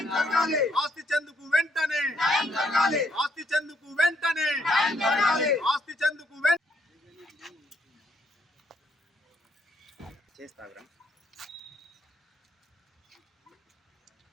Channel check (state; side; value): normal; both; correlation 0.71